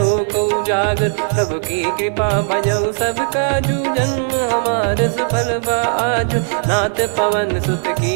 उजागर। प्रभु की कृपा भजऊ सब काजू जन्म हमार सफल बा आजु। नाथ पवन सुत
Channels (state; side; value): silent; left; 66 dB below the other